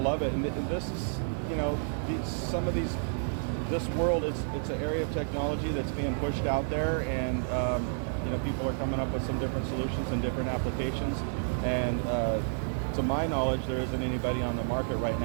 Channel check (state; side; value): silent; left; digital silence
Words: it, and this is, you know, this world, it's an area of technology that's being pushed out there, and you know, people are coming up with some different solutions and different applications, and to my knowledge, there isn't anybody on the market right